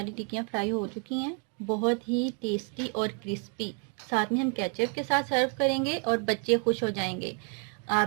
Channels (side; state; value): left; quieter; 37.4 dB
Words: टिक्कियाँ फ्राई हो चुकी हैं, बहुत ही टेस्टी और क्रिस्पी। साथ में हम केचप के साथ सर्व करेंगे और बच्चे खुश हो जाएंगे।